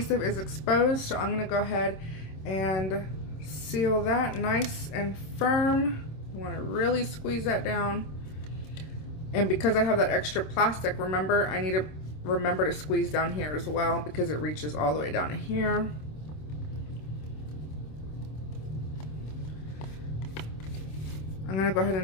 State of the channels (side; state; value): right; late; 26 ms